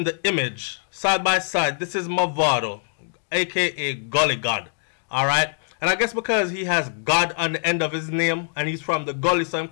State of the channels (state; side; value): silent; right; digital silence